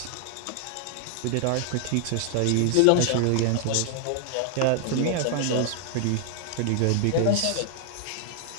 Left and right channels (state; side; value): different; both; correlation 0.00